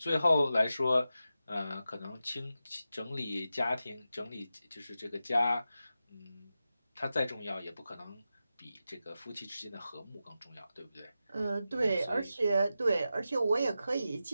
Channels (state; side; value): inverted; both; correlation -0.91